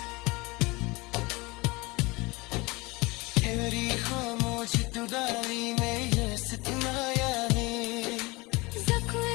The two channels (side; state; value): right; quieter; 24.2 dB